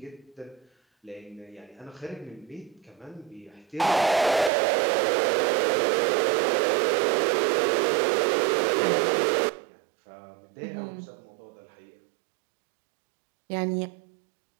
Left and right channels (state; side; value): drops out; left; at 4.5 s